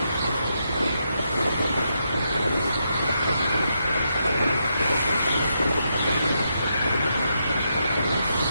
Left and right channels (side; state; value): both; inverted; correlation -0.82